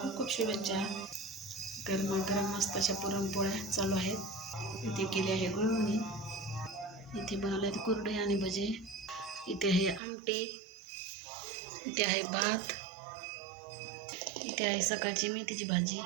खूप शुभेच्छा. गरमागरम मस्त अशा पुरणपोळ्या चालू आहेत. इथे केली आहे गुळवणी, इथे बनवले आहेत कुरडे आणि भजे, इथे आहे आमटी, इथे आहे भात, इथे आहे सकाळची मेथीची भाजी,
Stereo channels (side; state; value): left; drops out; at 10.0 s